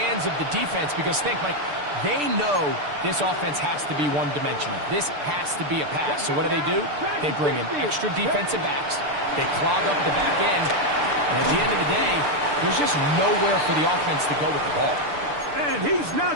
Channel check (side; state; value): left; late; 6.8 ms